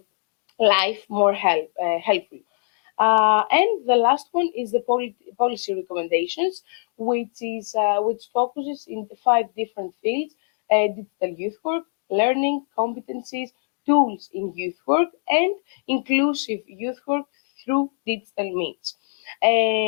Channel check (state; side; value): silent; right; 63 dB below the other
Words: life more helpful. And the last one is the policy recommendations, which focuses in 5 different fields: digital youth work, learning, competencies, tools in youth work, and inclusive youth work through digital means.